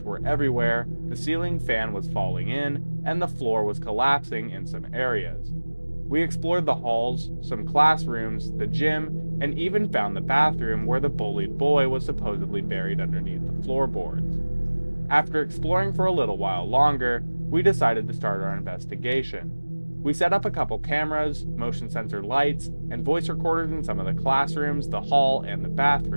were everywhere, the ceiling fan was falling in, and the floor was collapsing in some areas. We explored the halls, some classrooms, the gym, and even found the bathroom where the bullied boy was supposedly buried underneath the floorboards. After exploring for a little while longer, we decided to start our investigation. We set up a couple cameras, motion sensor lights, and voice recorders in some of the classrooms, the hall, and the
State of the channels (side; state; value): both; inverted; correlation -1.00